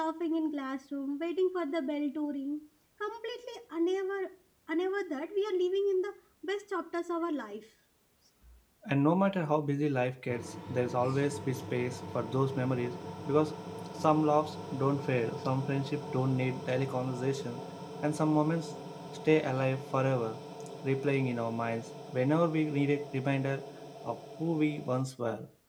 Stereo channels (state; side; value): identical; both; correlation 1.00